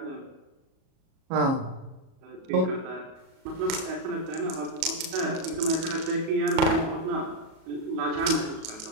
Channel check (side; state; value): left; late; 37 ms